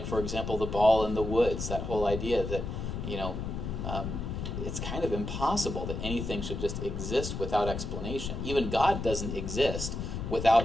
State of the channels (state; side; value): noise; left; rumble, 4 dB below the sound